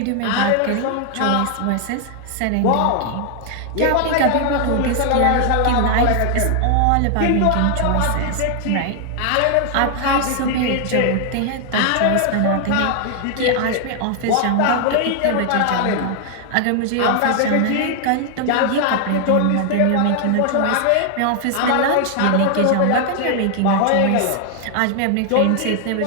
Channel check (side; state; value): both; different; correlation 0.00